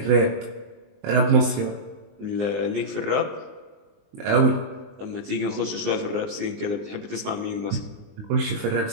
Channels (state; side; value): late; left; 19 ms